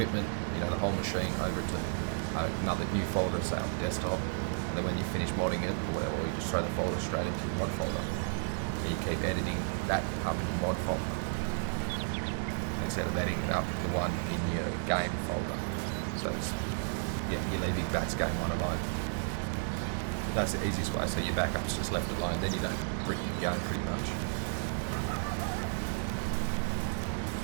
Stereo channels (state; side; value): silent; left; digital silence